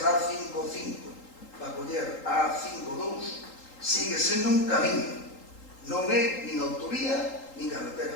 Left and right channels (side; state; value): right; late; 3.8 ms